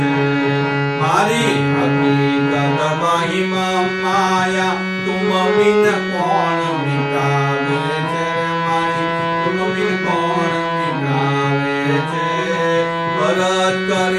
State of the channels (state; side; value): identical; both; correlation 1.00